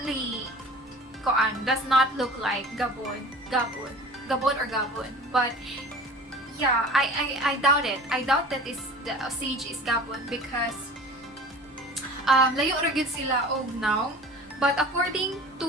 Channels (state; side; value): normal; both; correlation 0.41